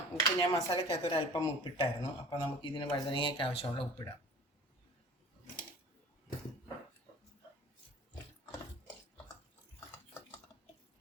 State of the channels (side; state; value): both; normal; correlation 0.45